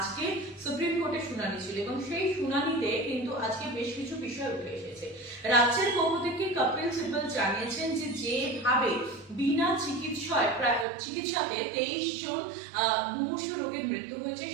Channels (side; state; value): left; drops out; at 10.9 s